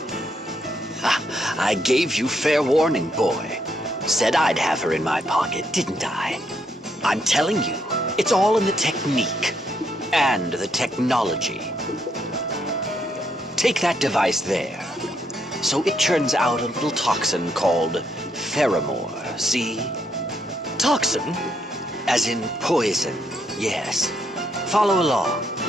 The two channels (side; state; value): both; normal; correlation 0.75